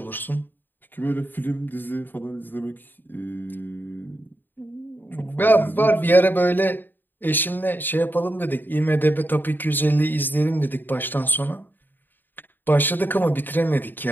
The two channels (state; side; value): late; right; 0.092 ms